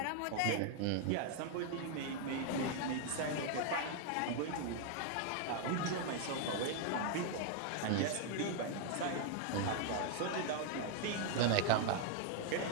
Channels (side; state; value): both; different; correlation 0.00